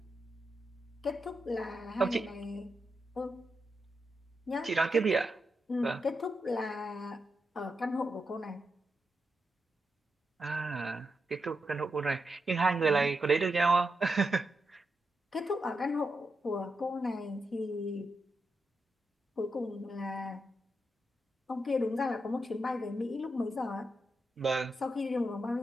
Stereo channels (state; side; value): normal; both; correlation 0.85